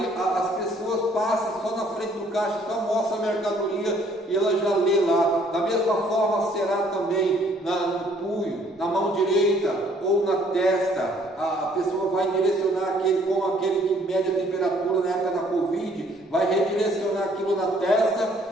as pessoas passam só na frente do caixa, só mostra a mercadoria e ela já lê lá. Da mesma forma será também no punho, na mão direita ou na testa. A pessoa vai direcionar como aquele que mede a temperatura na época da Covid, vai redirecionar aquilo na testa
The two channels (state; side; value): normal; both; correlation 0.62